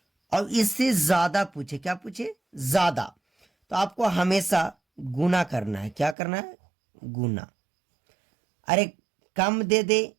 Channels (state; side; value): drops out; left; at 6.2 s